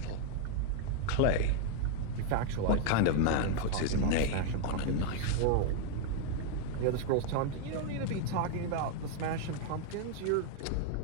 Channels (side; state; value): both; different; correlation 0.00